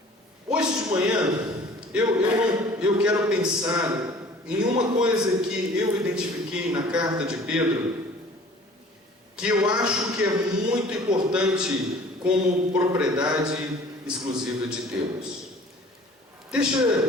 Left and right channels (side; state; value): both; normal; correlation 0.48